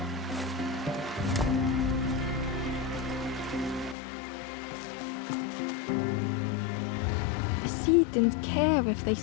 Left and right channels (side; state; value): right; drops out; at 4.0 s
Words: The sea didn't care if they